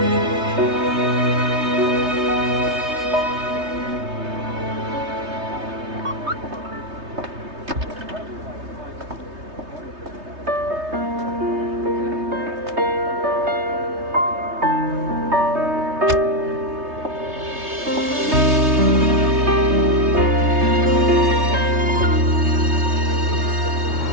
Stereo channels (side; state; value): left; late; 3.2 ms